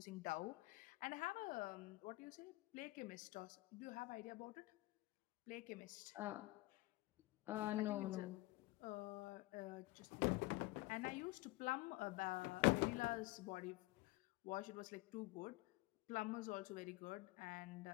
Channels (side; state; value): right; quieter; 21.1 dB